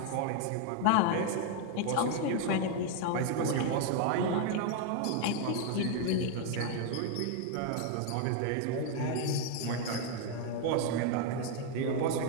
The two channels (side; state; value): both; different; correlation 0.01